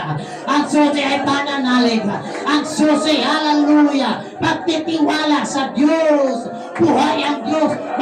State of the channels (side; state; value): both; identical; correlation 1.00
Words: ang susi ay pananalig, ang susi, hallelujah, pagtitiwala sa Diyos, buhay ang Diyos,